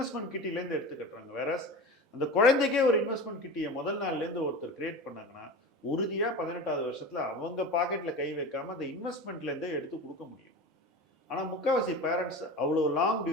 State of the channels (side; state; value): both; normal; correlation 0.31